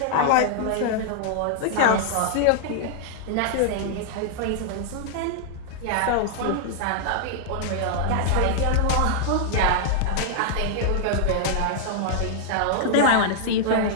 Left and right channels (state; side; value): different; both; correlation -0.01